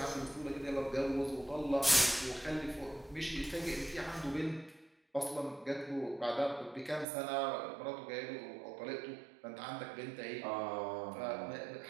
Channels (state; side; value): drops out; left; at 7.1 s